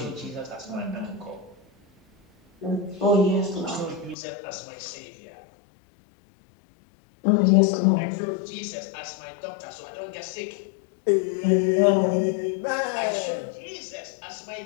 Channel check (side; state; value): right; drops out; at 4.2 s